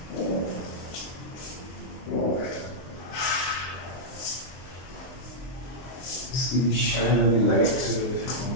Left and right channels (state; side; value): late; right; 23 ms